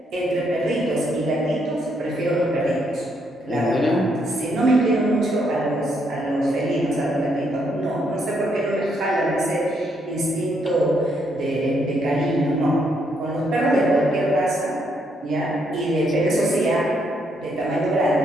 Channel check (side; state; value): both; normal; correlation 0.74